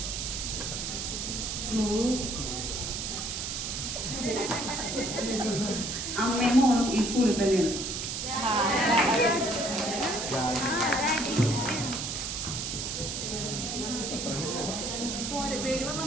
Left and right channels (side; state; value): right; noise; hiss, 3 dB below the sound